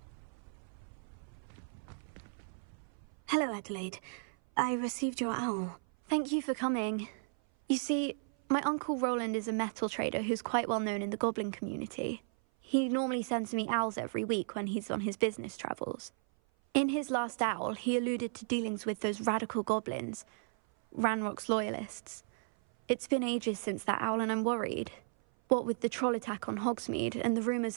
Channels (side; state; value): left; silent; 55 dB below the other